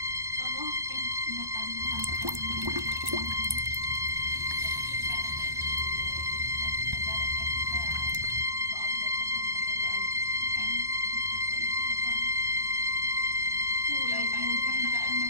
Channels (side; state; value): left; late; 1.1 ms